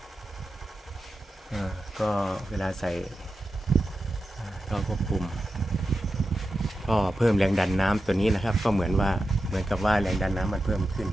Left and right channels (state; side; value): normal; both; correlation 0.91